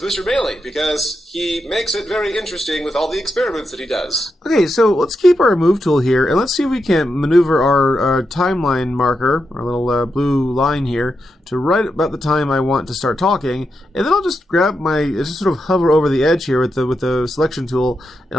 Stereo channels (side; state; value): both; normal; correlation 0.86